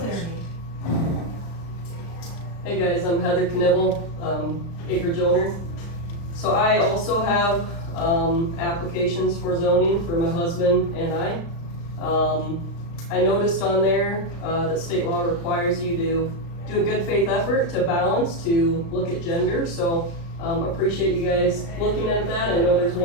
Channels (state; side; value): late; right; 35 ms